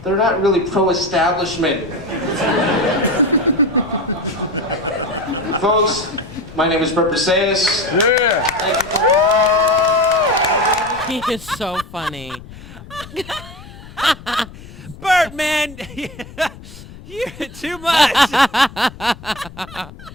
they're not really pro-establishment. Folks, my name is Burt Paseos. Yeah. He is so funny. Burt, man, you're too much.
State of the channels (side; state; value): left; noise; rumble, 17 dB below the sound